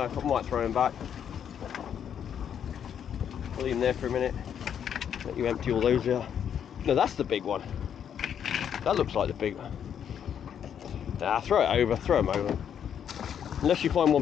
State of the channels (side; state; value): right; quieter; 8.6 dB